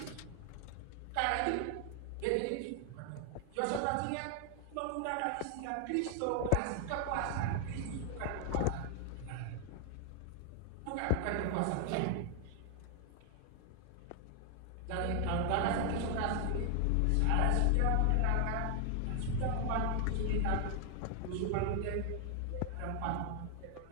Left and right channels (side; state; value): both; different; correlation 0.00